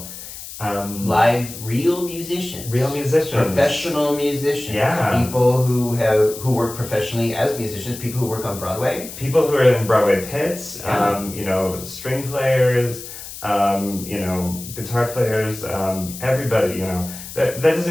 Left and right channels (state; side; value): noise; left; hiss, 12 dB below the sound